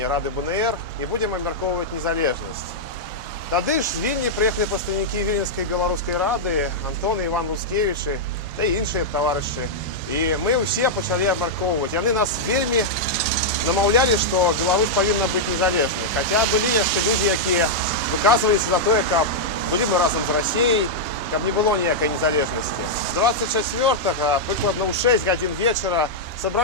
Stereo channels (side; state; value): both; normal; correlation -0.06